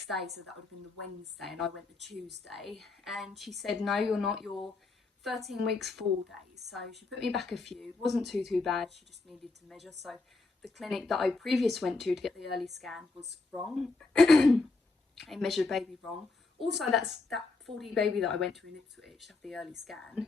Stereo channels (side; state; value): right; quieter; 3.6 dB